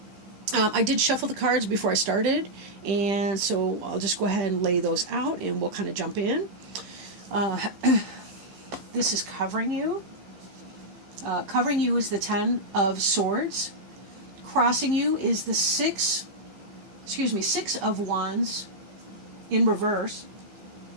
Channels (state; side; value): late; left; 15 ms